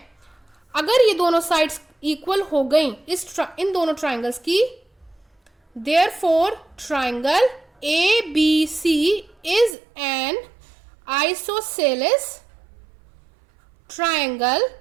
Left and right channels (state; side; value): drops out; left; at 9.8 s